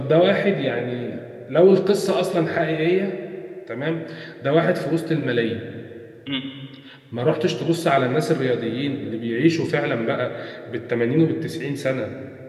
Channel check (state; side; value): identical; both; correlation 1.00